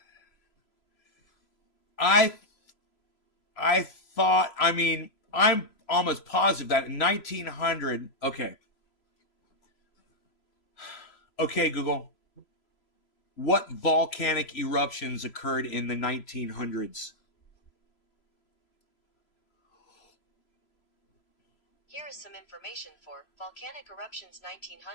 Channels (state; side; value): late; right; 3.0 ms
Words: I thought, I'm almost positive that in 1900, okay, Google, what volcanic eruptions occurred in the 1900s? Here is some information for volcanic eruptions